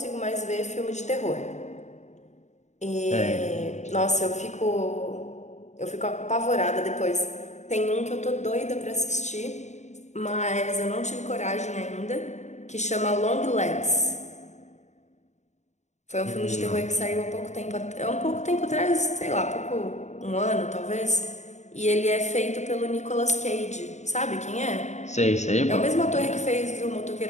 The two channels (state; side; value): late; right; 0.34 ms